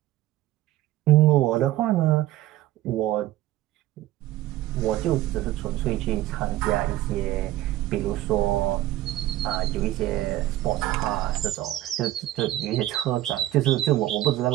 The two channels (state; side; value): quieter; left; 15.0 dB